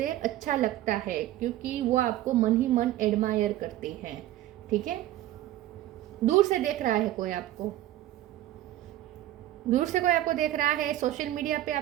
अच्छा लगता है, क्योंकि वो आपको मन ही मन एडमायर करती है, ठीक है। दूर से देख रहा है कोई आपको, दूर से कोई आपको देख रहा है। सोशल मीडिया पे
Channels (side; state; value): left; quieter; 14.1 dB